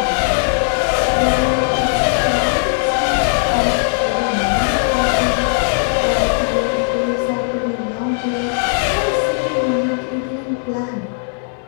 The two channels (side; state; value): right; silent; digital silence